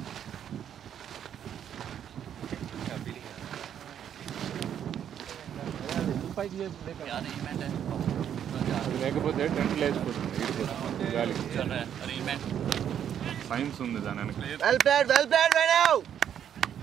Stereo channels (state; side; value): quieter; left; 9.3 dB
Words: లేకపోతే టెంట్ లేచిపోతుంది గాలికి. సైన్స్ ఉంది దాని వెనక. Well played right now.